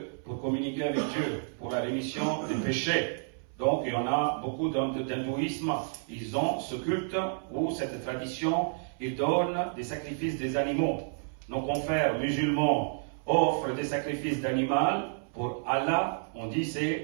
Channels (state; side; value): silent; left; 58 dB below the other